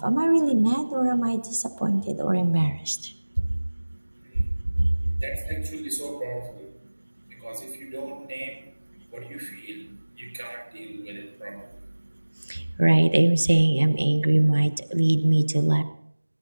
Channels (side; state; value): both; inverted; correlation -1.00